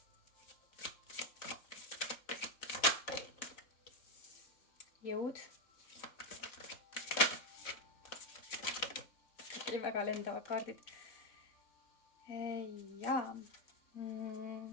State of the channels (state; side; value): late; right; 4.1 ms